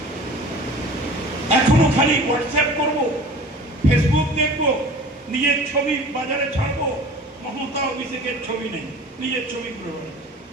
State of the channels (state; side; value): normal; both; correlation 0.42